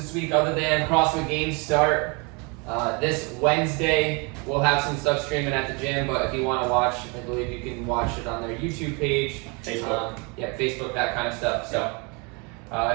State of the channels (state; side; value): quieter; left; 31.0 dB